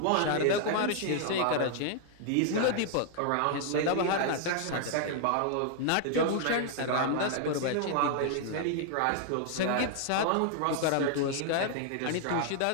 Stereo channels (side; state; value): both; different; correlation -0.01